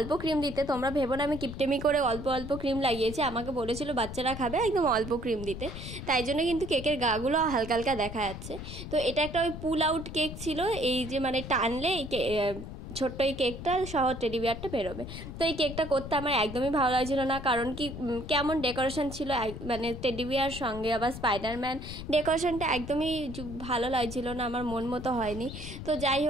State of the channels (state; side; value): noise; left; rumble, 10 dB below the sound